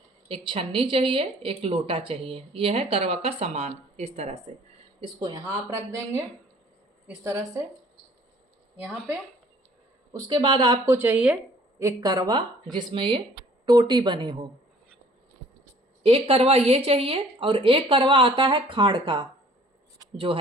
एक छन्नी चाहिए, एक लोटा चाहिए। यह है करवा का सामान। इस तरह से इसको यहाँ आप रख देंगे इस तरह से यहाँ पे। उसके बाद आपको चाहिए एक करवा जिसमें ये टोटी बनी हो। एक करवा ये चाहिए और एक करवा आता है खाड़ का, जो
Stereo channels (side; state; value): both; normal; correlation 0.55